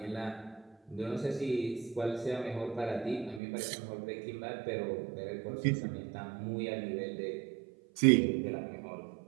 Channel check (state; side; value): drops out; left; at 3.4 s